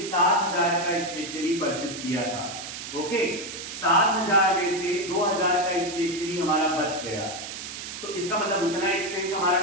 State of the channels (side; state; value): right; noise; hiss, 9 dB below the sound